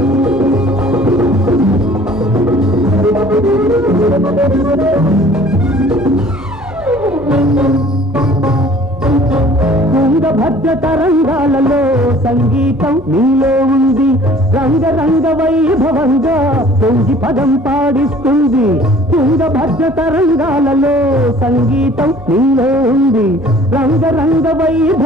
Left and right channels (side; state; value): both; normal; correlation 0.52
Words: తుంగభద్ర తరంగాలలో సంగీతం నీలో ఉంది, రంగరంగ వైభవంగా పొంగి పదం పాడిస్తుంది. తుంగభద్ర తరంగాలలో సంగీతం నీలో ఉంది, రంగరంగ